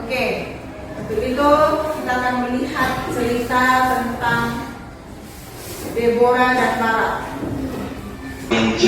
Oke. Untuk itu kita akan melihat cerita tentang Deborah dan Barak. Yang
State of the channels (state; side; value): identical; both; correlation 1.00